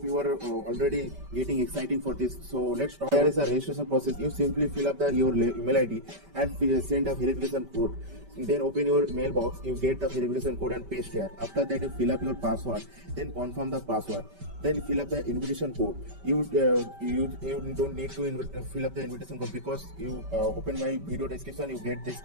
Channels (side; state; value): left; late; 5.2 ms